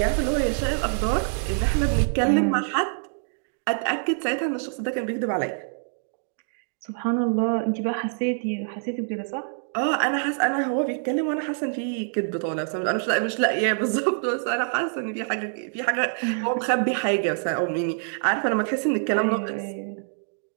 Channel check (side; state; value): left; silent; digital silence